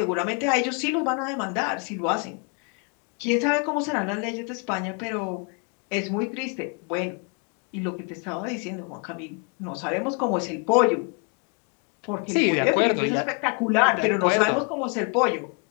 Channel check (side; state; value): right; quieter; 35.6 dB